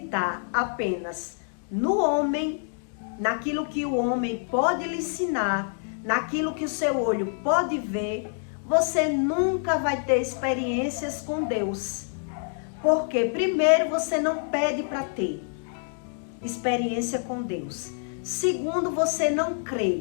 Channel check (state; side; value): silent; right; 60 dB below the other